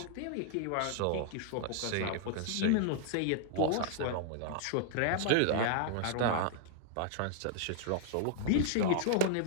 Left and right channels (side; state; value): both; different; correlation 0.00